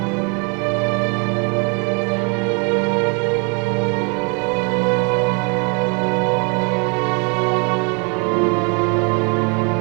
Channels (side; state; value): left; quieter; 34.4 dB